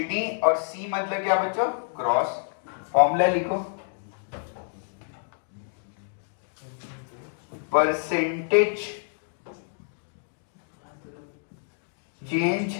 और C मतलब क्या बच्चों? Cross. Formula लिखो, percentage change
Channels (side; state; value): right; silent; digital silence